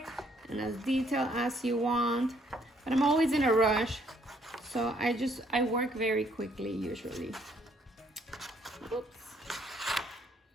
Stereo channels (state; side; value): normal; both; correlation 0.67